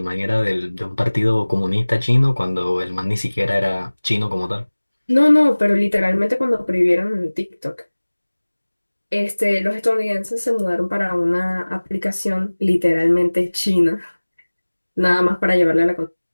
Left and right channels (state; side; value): inverted; both; correlation -1.00